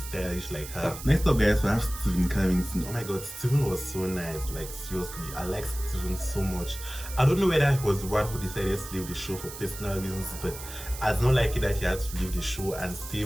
stylish like her. Next up, guys, we have Stephen Carrington. Oh my god, Stephen was so nice. Like seriously, I like Stephen so much. I don't know whether he was the one who decided to leave the show for personal reasons, but I was not like it that he had to leave the show and stay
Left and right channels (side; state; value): right; noise; hiss, 12 dB below the sound